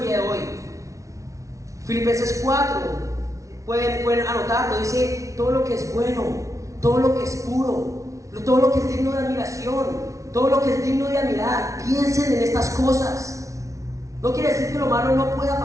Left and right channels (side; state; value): left; late; 0.15 ms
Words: día de hoy? Filipenses 4, pueden anotarlo, dice: todo lo que es bueno, todo lo que es puro, todo lo que es digno de admiración, todo lo que es digno de admirar, piensen en estas cosas. No quiere decir que lo malo no pueda